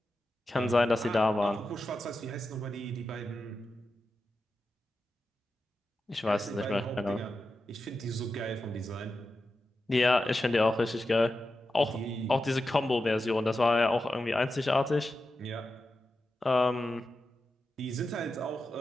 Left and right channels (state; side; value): normal; both; correlation 0.90